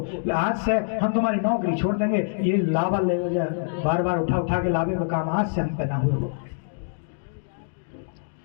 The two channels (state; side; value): silent; right; digital silence